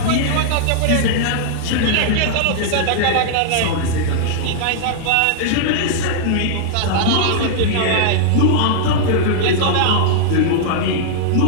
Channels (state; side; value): different; both; correlation -0.01